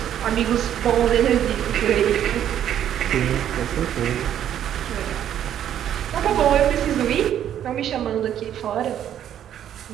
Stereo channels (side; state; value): left; quieter; 10.4 dB